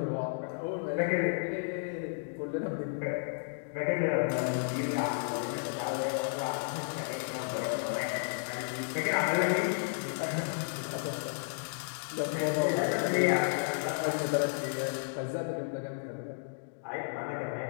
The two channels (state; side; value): silent; right; digital silence